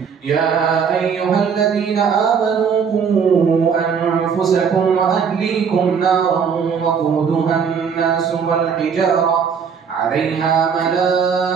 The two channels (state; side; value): quieter; left; 6.6 dB